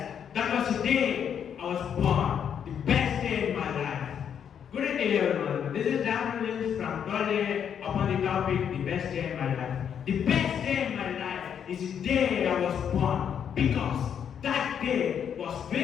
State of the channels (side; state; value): right; quieter; 8.3 dB